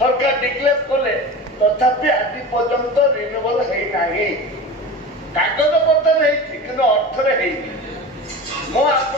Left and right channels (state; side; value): normal; both; correlation 0.31